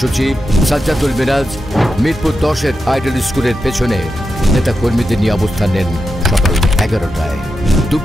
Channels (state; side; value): normal; both; correlation 0.89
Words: সাজ্জাদুল মিরাজ মিরপুর 10-এর আইডল স্কুলের পেছনে নেতাকর্মীদের নিয়ে অবস্থান নেন সকাল 11টায়।